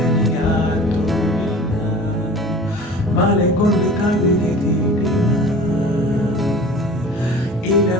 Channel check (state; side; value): normal; both; correlation 0.41